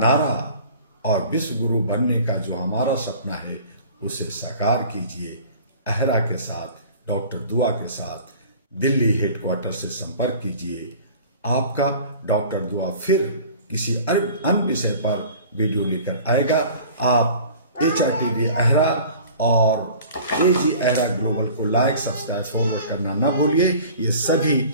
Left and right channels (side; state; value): both; inverted; correlation -0.44